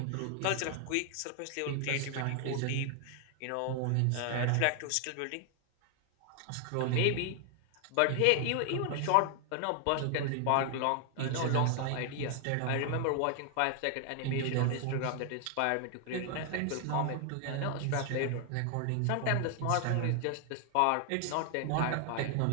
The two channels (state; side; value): different; both; correlation 0.00